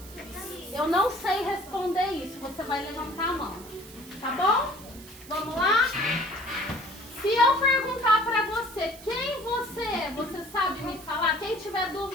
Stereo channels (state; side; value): noise; right; hiss, 18 dB below the sound